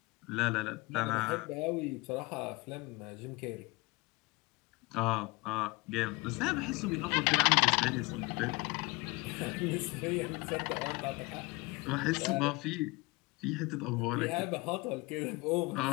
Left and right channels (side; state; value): right; quieter; 24.5 dB